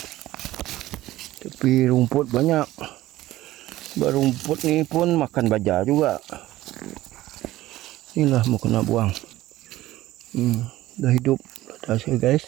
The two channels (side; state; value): left; quieter; 16.0 dB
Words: Tapi rumput banyak. Rumput ni pun makan baja juga. Inilah mau kena buang. Dah hidup hasil guys.